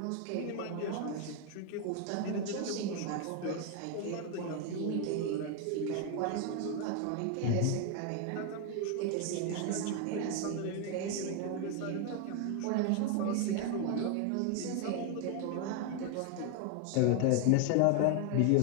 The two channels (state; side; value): different; both; correlation 0.01